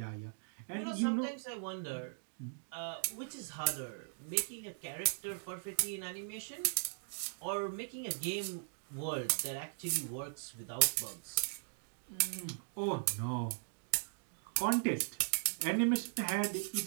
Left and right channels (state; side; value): silent; left; digital silence